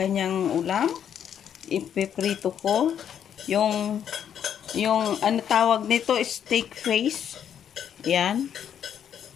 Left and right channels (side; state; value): right; quieter; 9.0 dB